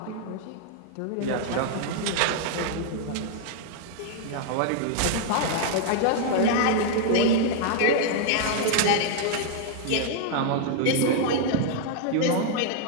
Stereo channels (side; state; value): both; different; correlation 0.00